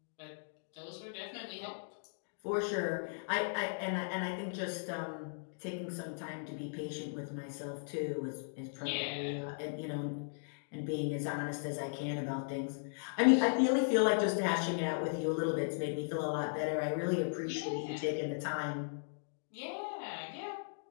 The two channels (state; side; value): silent; right; digital silence